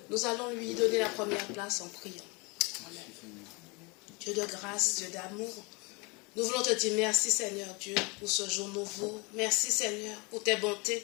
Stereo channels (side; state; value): right; quieter; 28.6 dB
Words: Nous allons lui donner la première place en priant. Amen. Dieu de grâce, Dieu d'amour, nous voulons te dire merci Seigneur Dieu pour ce jour nouveau. Merci Seigneur pour tes bontés